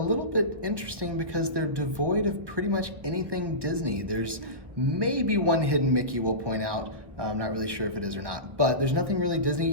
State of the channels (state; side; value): late; left; 1.1 ms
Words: bit interesting because they're devoid of pretty much anything Disney. There's maybe one hidden Mickey we'll point out. I'm not really sure if it is or not, but there's nothing really Disney.